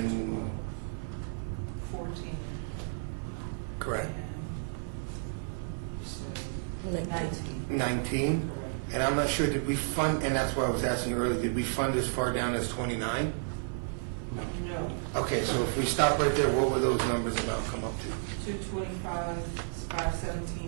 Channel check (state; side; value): silent; left; 56 dB below the other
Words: 14. correct. And 19. 19. And I'm not sure, did we fund, and that's why I was asking you earlier, did we fund as far down as 29? No. Okay, so if we stop right there, what would those numbers amount come up to? 225,